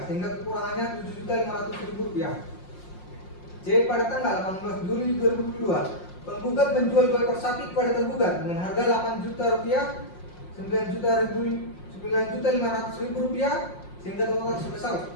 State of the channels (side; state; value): right; late; 5.6 ms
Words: sehingga kekurangannya Rp7.500.000. C. Pada tanggal 18 Juli 2022 penggugat menjual 2 ekor sapi kepada tergugat dengan harga Rp8 juta, Rp9.500.000, sehingga total sebesar